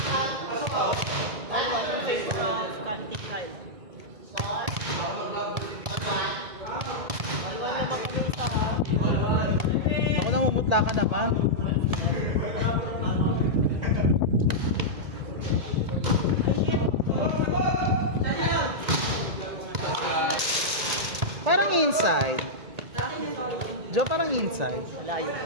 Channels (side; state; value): left; late; 1.8 ms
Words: Ako namumutla ka naman. Parang inside. Jo, parang inside.